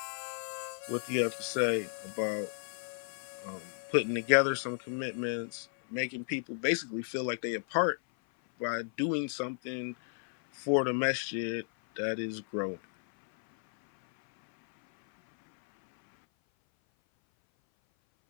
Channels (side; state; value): right; silent; 56 dB below the other